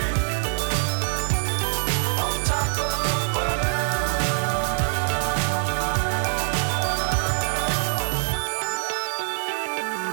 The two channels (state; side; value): silent; left; 62 dB below the other